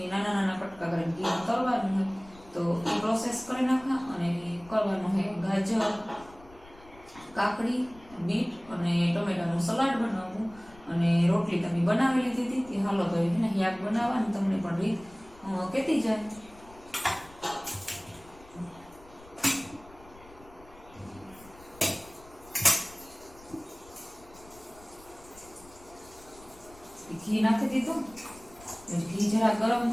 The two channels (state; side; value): noise; left; rumble, 23 dB below the sound